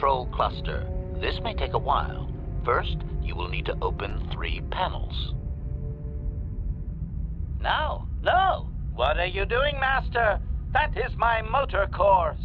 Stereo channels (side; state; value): both; identical; correlation 1.00